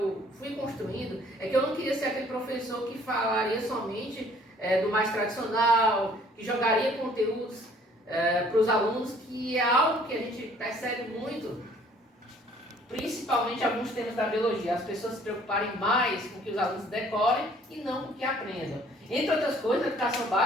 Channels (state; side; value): normal; both; correlation 0.57